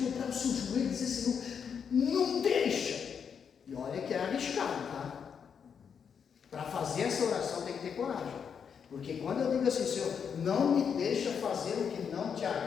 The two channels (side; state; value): right; quieter; 7.0 dB